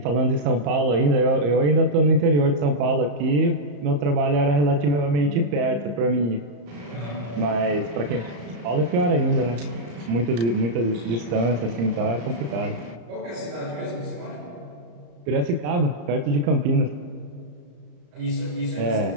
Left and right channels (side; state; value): left; late; 34 ms